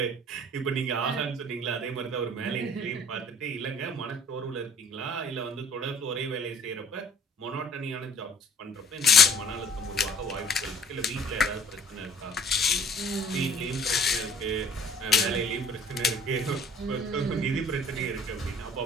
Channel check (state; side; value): normal; both; correlation 0.52